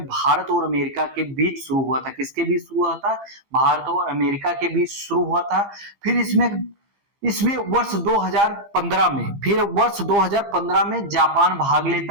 भारत और अमेरिका के बीच शुरू हुआ था। किसके बीच शुरू हुआ था? भारत और अमेरिका के बीच शुरू हुआ था। फिर इसमें वर्ष 2015 में जापान भाग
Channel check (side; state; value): left; late; 15 ms